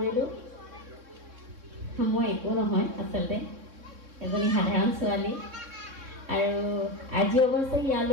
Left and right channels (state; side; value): late; left; 3.6 ms